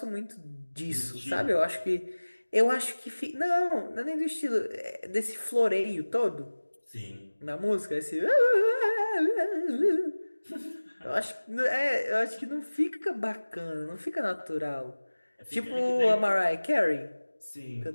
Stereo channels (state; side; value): inverted; both; correlation -1.00